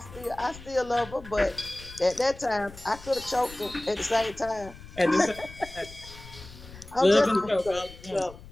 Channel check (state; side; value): noise; left; rumble, 17 dB below the sound